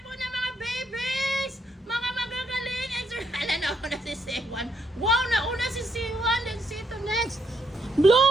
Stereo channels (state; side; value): normal; both; correlation 0.75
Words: na mga babies! Mga magagaling! Hala, nauna si Simon. Wow, nauna si Simon. Let's see to next.